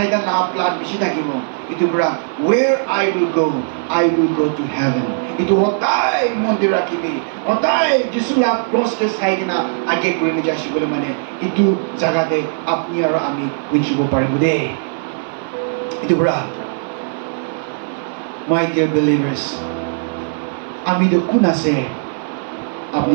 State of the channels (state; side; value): silent; left; 58 dB below the other